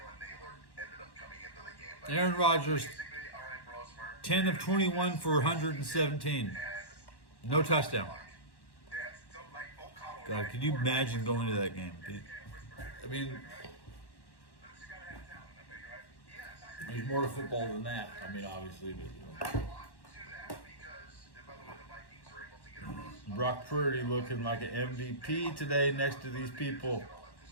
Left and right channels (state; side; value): late; right; 1.1 ms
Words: Naylor ended up coming into the game. But Aaron Rodgers, basically, all right, Brosmer. 10 of 21 for 117. No touchdown. God, could you imagine going to that game? I mean, there's more to football than that. I mean, obviously, but you know. Brock Purdy looking like an MVP today next to these people.